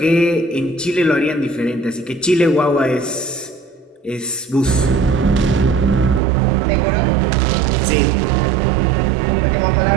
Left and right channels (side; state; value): left; drops out; at 6.2 s